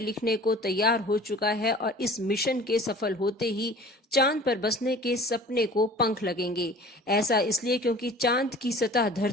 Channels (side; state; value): both; normal; correlation 0.45